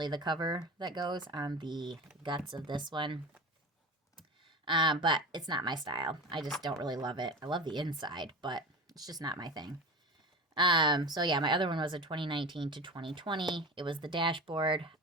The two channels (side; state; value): both; normal; correlation 0.30